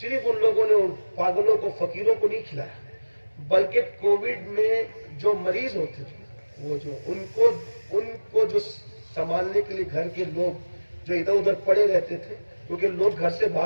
ان لوگوں نے ان پاگلوں کو، فقیروں کو نہیں کھلایا، بلکہ کووڈ میں جو مریض ہوتے تھے، وہ جو ان کو جو سنبھالنے کے لیے گھر کے لوگ جو ادھر ادھر پڑے رہتے تھے، کیونکہ لوگ گھر سے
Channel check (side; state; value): both; inverted; correlation -1.00